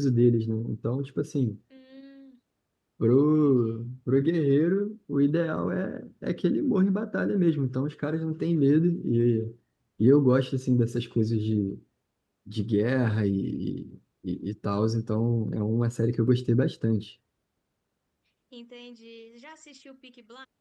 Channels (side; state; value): both; identical; correlation 1.00